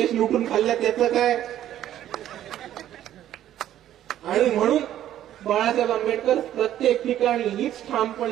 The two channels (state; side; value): quieter; left; 11.9 dB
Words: लुटून खाल्ला त्याचं काय. आणि म्हणून बाळासाहेब आंबेडकर प्रत्येक ठिकाणी हीच